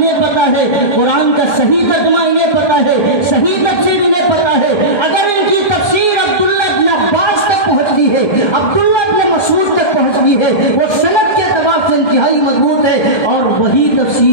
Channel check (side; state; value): right; late; 1.3 ms